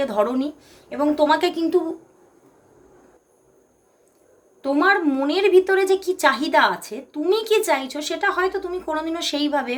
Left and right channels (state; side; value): identical; both; correlation 1.00